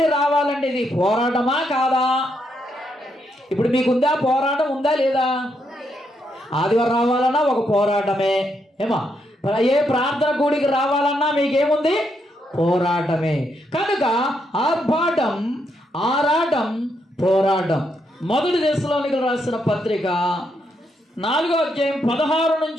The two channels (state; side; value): normal; both; correlation 0.78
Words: రావాలంటే ఇది పోరాటమా కాదా? ఇప్పుడు మీకుందా? పోరాటం ఉందా లేదా? ఆదివారం రావాలన్నా ఒక పోరాటమే. ఏమా ఏ ప్రార్థన కూడికి రావాలన్నా మీకేముంది? పోరాటమే. కనుక ఆర్భాటం, ఆరాటం, పోరాటం. మొదటి దశలోనికలు రాసిన పత్రిక 4వ అధ్యాయం 16